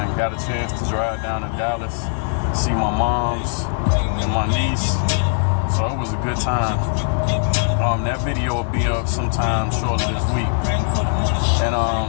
Got a chance to drive down to Dallas, see my moms and my niece. So it was a good time. That video will be up sometime shortly this week. And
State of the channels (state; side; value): silent; right; 62 dB below the other